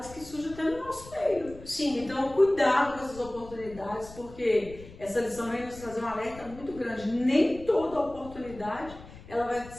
que surgem até no nosso meio. Sim. Então, cuidado com essas oportunidades, porque essa lição vem nos trazer um alerta muito grande. Nem toda oportunidade ela vai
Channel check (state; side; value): noise; left; rumble, 17 dB below the sound